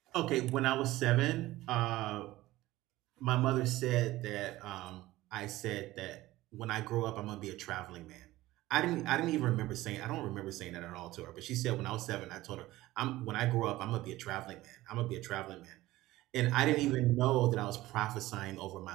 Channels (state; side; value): quieter; left; 17.2 dB